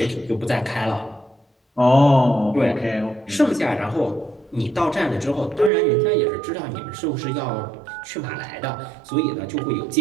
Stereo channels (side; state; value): left; drops out; at 5.7 s